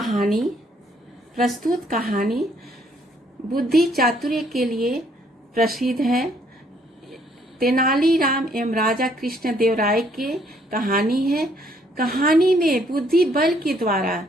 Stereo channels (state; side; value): normal; both; correlation 0.66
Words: कहानी बुद्धि चातुर्य के लिए प्रसिद्ध है। तेनालीराम एवं राजा कृष्ण देव राय की कहानी है। कहानी में बुद्धि बल के द्वारा